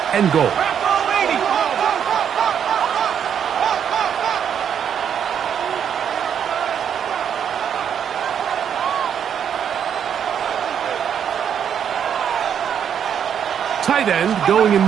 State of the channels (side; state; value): left; quieter; 8.4 dB